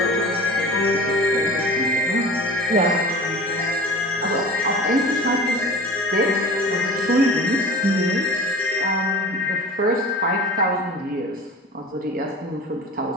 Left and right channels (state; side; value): normal; both; correlation 0.37